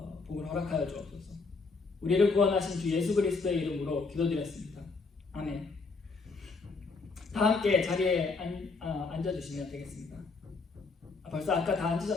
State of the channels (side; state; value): right; quieter; 4.2 dB